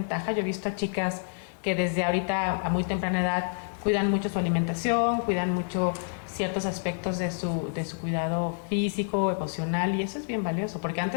Yo he visto a chicas que desde ahorita a muy temprana edad cuidan mucho su alimentación, cuidan mucho ciertos aspectos de su cuidado físico, emocional, y eso es bien valioso, porque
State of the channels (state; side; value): silent; right; 59 dB below the other